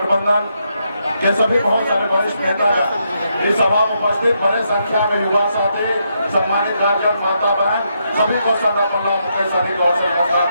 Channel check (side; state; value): both; inverted; correlation -0.79